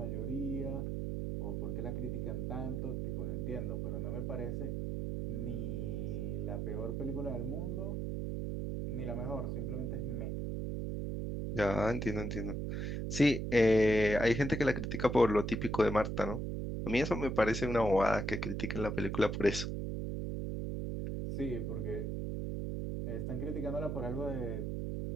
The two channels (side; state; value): right; noise; hum, 2 dB below the sound